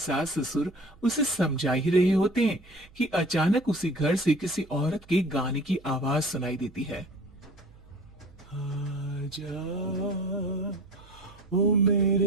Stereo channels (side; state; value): right; noise; hum, 25 dB below the sound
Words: ससुर उसे समझा ही रहे होते हैं कि अचानक उसी घर से किसी औरत के गाने की आवाज सुनाई देती है। आजा ओ